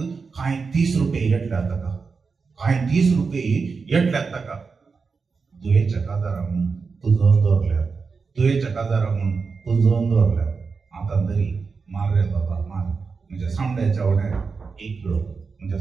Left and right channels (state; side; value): quieter; left; 4.9 dB